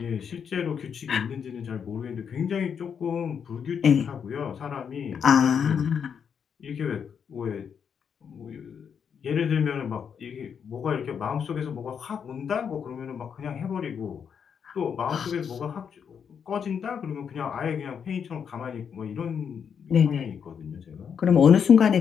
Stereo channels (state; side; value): quieter; right; 7.2 dB